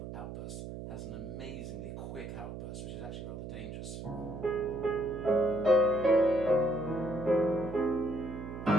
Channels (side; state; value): right; noise; hum, 9 dB below the sound